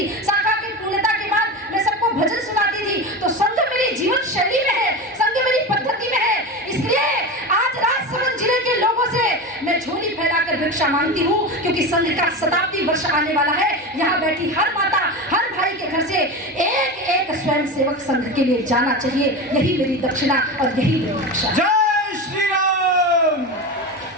शाखा की पूर्णता के बाद मैं सबको भजन सुनाती थी। तो संघ मेरी जीवन शैली में है, संघ मेरी पद्धति में है। इसलिए आज राजसमंद जिले के लोगों से मैं झोली फैलाकर भिक्षा मांगती हूँ, क्योंकि संघ का शताब्दी वर्ष आने वाला है। यहाँ बैठी हर माता, हर भाई के घर से एक स्वयंसेवक संघ के लिए जाना चाहिए। यही मेरी दक्षिणा और यही मेरी दीक्षा। जय श्री राम।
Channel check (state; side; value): normal; both; correlation 0.24